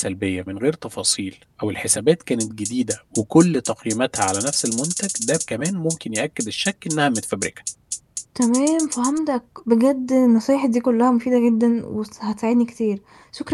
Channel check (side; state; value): both; identical; correlation 1.00